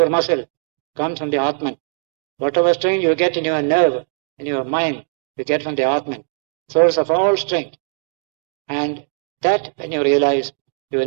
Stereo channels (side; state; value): left; silent; digital silence